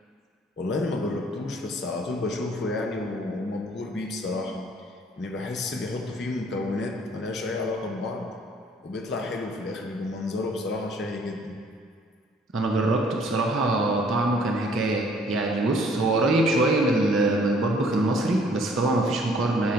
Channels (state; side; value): normal; both; correlation 0.59